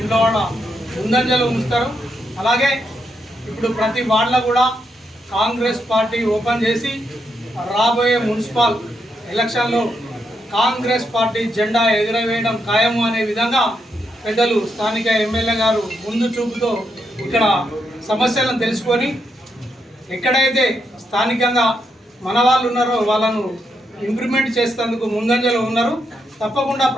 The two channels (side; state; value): both; normal; correlation 0.81